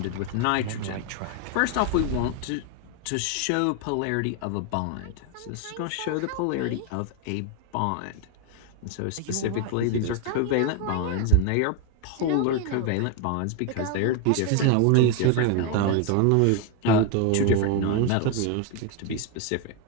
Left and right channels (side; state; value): both; different; correlation 0.01